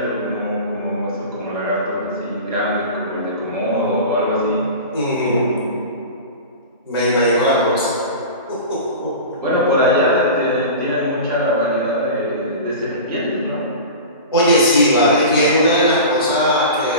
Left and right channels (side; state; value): both; inverted; correlation -0.32